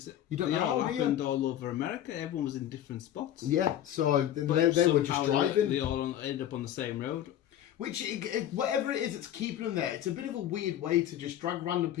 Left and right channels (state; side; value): quieter; right; 11.5 dB